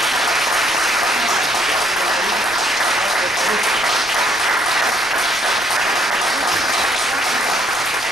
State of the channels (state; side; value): noise; right; rumble, 23 dB below the sound